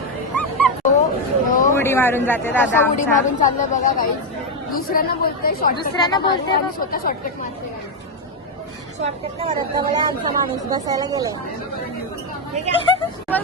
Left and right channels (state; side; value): normal; both; correlation 0.04